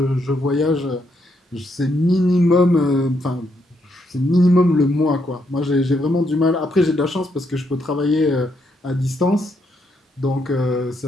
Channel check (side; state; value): both; normal; correlation 0.77